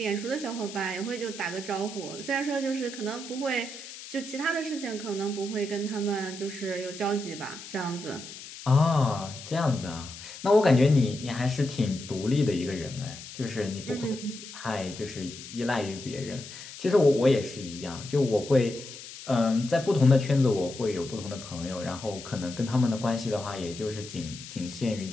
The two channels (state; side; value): noise; left; hiss, 13 dB below the sound